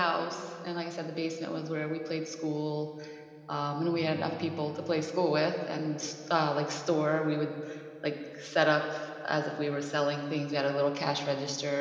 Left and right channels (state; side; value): identical; both; correlation 1.00